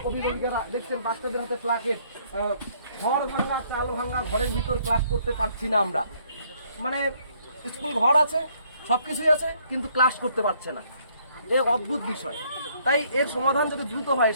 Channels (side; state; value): both; inverted; correlation -0.66